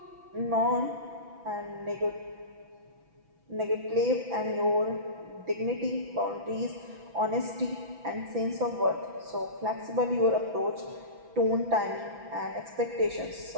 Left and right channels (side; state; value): left; late; 6.0 ms